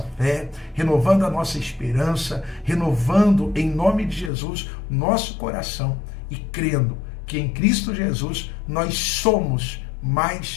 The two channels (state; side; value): drops out; right; at 4.3 s